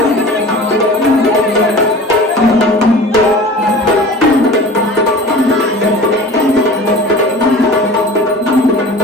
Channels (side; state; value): both; normal; correlation 0.39